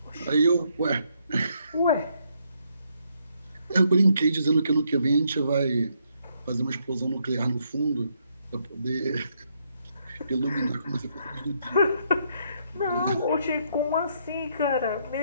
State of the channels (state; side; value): inverted; both; correlation -0.74